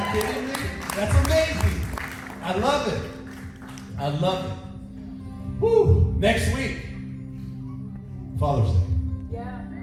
kidding me? That's amazing. I love it. I love it. Woo! Next week, Father's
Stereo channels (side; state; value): both; identical; correlation 1.00